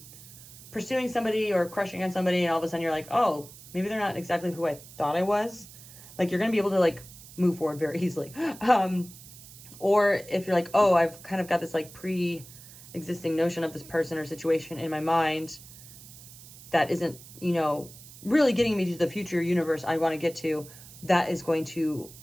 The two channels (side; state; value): right; noise; hiss, 18 dB below the sound